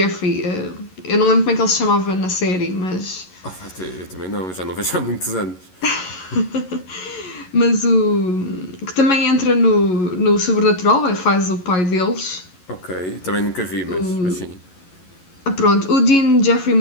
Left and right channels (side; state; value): right; late; 11 ms